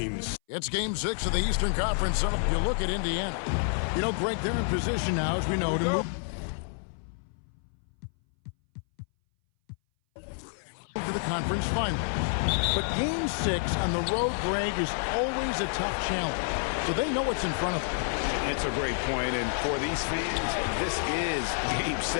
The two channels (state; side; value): silent; right; 59 dB below the other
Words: It's Game 6 of the Eastern Conference. So if you look at Indiana, you know, Greg, they're in position now, as we know, to move to the conference final. But Game 6 on the road, Greg, is always a tough challenge. So they know what's in front of them. It's a great point, and for these fans, this is Game